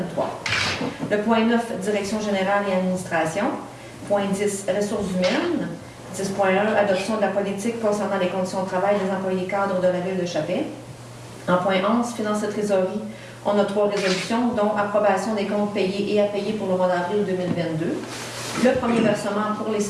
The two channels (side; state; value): both; identical; correlation 1.00